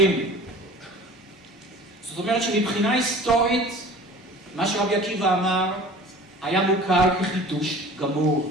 זאת אומרת שמבחינה היסטורית, מה שרבי עקיבא אמר, היה מוכר כחידוש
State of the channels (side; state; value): both; normal; correlation 0.43